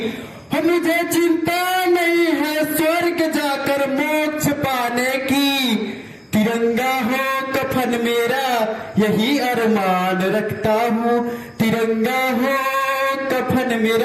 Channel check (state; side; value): identical; both; correlation 1.00